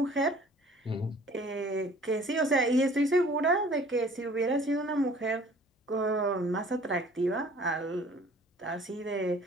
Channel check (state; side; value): normal; both; correlation 0.52